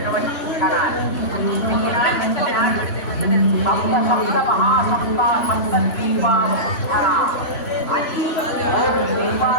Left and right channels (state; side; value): late; right; 3.1 ms